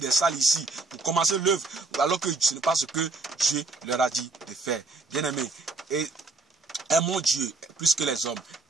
salles ici. Pour commencer l'œuvre. Alors que ce n'est pas ce que Dieu leur a dit de faire. Bien-aimé, et aimons Dieu plus que les hommes.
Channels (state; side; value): quieter; left; 3.6 dB